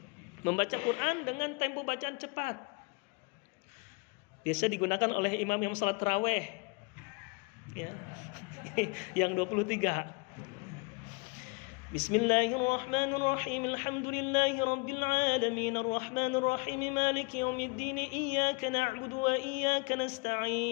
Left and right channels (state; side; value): quieter; right; 29.5 dB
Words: Membaca Quran dengan tempo bacaan cepat. Biasa digunakan oleh imam yang salat tarawih. Ya. Yang 23. Bismillahirrahmanirrahim. Alhamdulillahi rabbil alamin. Arrahmanirrahim. Maliki yaumiddin. Iyyaka na'budu wa iyyaka